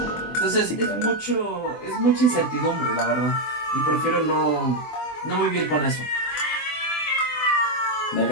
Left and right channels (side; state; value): right; late; 24 ms